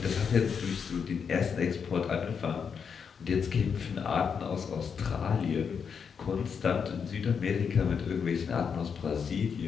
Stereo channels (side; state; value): right; quieter; 6.5 dB